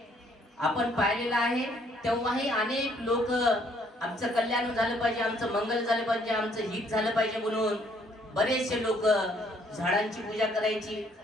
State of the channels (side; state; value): both; normal; correlation 0.65